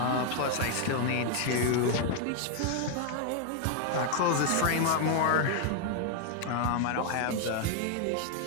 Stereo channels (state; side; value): different; both; correlation 0.00